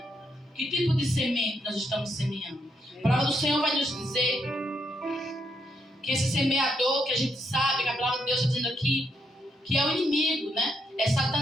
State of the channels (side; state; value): both; normal; correlation 0.78